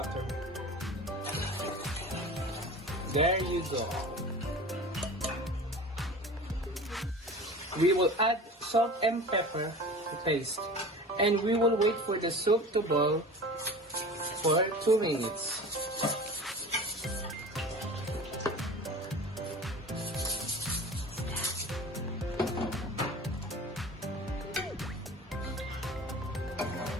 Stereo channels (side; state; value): both; normal; correlation 0.37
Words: There you go. We will add salt and pepper to taste, and we will wait for the soup to boil for 2 minutes.